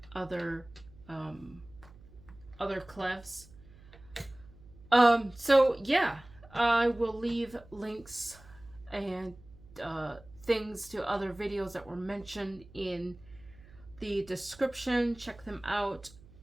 other clefs. So yeah, I will leave links and things to other videos that were mentioned in the description. Check them out.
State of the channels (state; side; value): noise; right; hum, 22 dB below the sound